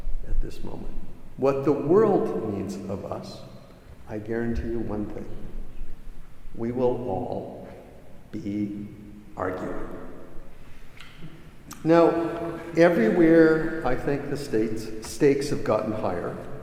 at this moment, what the world needs of us, I guarantee you one thing: we will all be arguing. Now, everywhere I think the stakes have gotten higher,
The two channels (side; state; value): both; identical; correlation 1.00